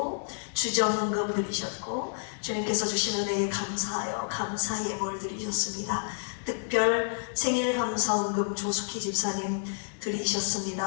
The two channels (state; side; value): silent; right; 58 dB below the other